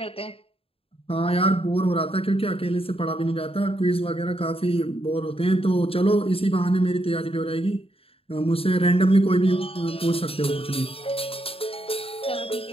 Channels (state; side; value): late; right; 0.27 ms